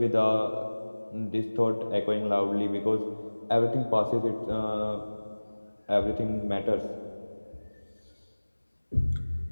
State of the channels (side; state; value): both; inverted; correlation -1.00